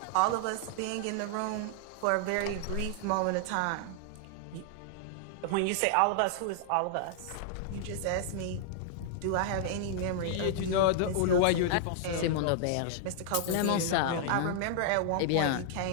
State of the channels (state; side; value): different; both; correlation 0.00